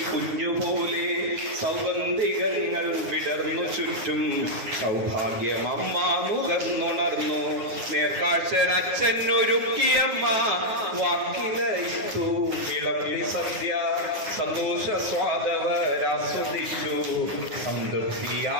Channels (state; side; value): late; left; 9.3 ms